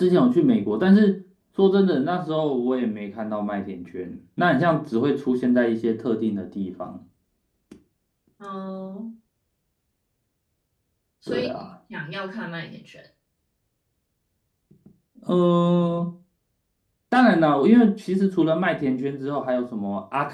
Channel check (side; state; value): both; identical; correlation 1.00